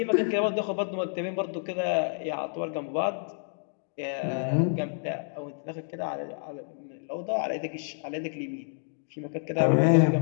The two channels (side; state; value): right; silent; digital silence